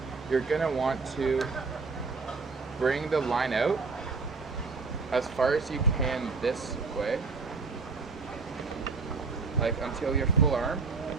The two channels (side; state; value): left; quieter; 4.5 dB